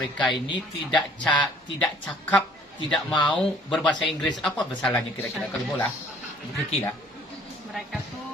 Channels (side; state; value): both; normal; correlation 0.57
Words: ini tidak cakap, tidak mau berbahasa Inggris? Apa masalahnya kira-kira kalau bola? Kiki lah. Mereka